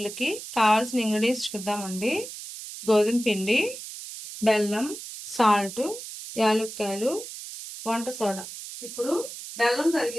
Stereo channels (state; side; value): noise; right; hiss, 11 dB below the sound